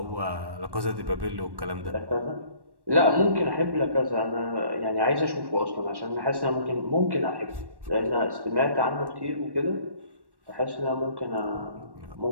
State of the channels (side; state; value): left; late; 1.1 ms